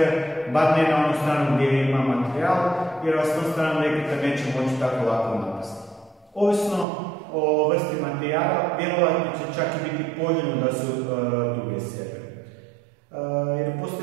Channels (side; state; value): left; drops out; at 6.9 s